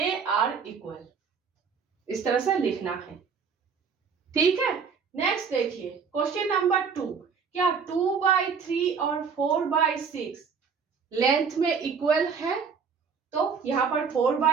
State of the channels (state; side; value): quieter; left; 6.0 dB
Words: आर इक्वल, इस तरह से लिखना है। ठीक है, नेक्स्ट देखिए क्वेश्चन नंबर 2, क्या 2/3 और 4/6 लेंथ में इक्वल है? तो यहां पर